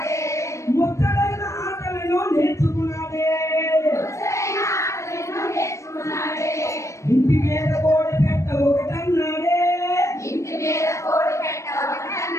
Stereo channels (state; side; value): late; right; 0.15 ms